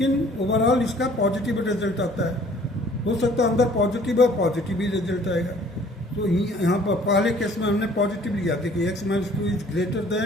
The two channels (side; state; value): both; normal; correlation 0.55